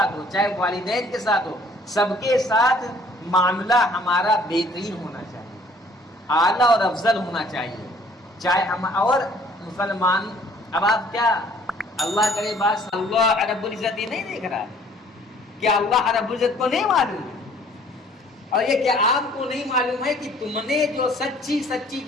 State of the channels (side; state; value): both; normal; correlation 0.57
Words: ہو، چاہے والدین کے ساتھ ہو، سب کے ساتھ معاملہ ہمارا بہترین ہونا چاہیے، اعلیٰ اور افضل ہونا چاہیے. چاہے ہم اور مسلمان، اب آپ کیا اللہ کرے بات اللہ رب العزت یہ نہیں دیکھ رہا ہے؟ کیا اللہ رب العزت کو نہیں معلوم ہے؟ اور یہ کیا آپ کو نہیں معلوم ہے کہ تم نے جو سچی